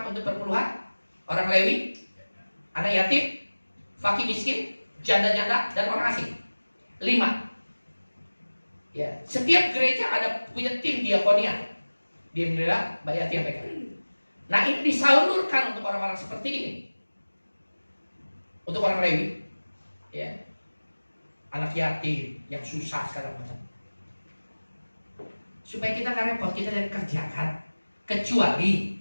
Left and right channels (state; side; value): inverted; both; correlation -1.00